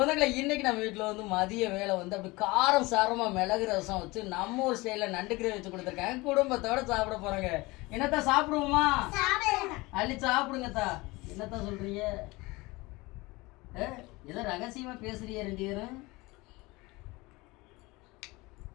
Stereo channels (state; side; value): quieter; right; 22.6 dB